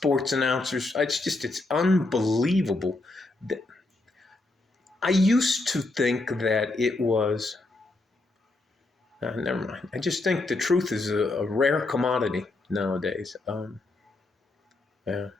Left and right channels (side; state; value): right; quieter; 3.0 dB